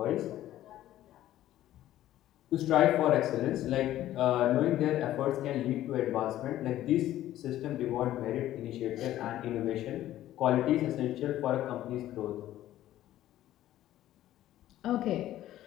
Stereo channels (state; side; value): quieter; right; 13.5 dB